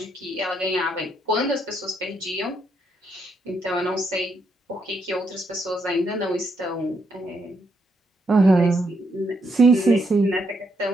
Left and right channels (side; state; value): both; normal; correlation 0.77